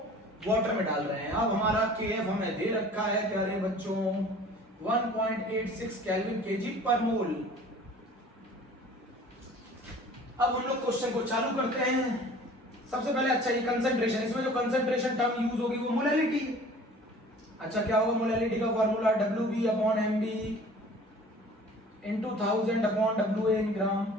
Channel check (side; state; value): both; normal; correlation 0.47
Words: वाटर में डाल रहे हैं। अब हमारा KF हमें दे रखा है प्यारे बच्चों 1.86 केल्विन केजी पर मोल। अब हम लोग क्वेश्चन को चालू करते हैं। सबसे पहले अच्छा ये कंसंट्रेशन, इसमें जो कंसंट्रेशन टर्म यूज होगी वो मोलैलिटी। अच्छा क्या होगा मोलैलिटी का formula? WB upon MB into 1000 upon WA इन ग्राम।